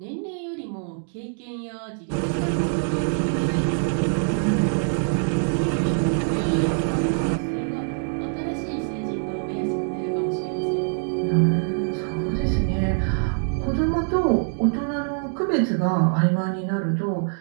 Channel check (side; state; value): left; silent; 60 dB below the other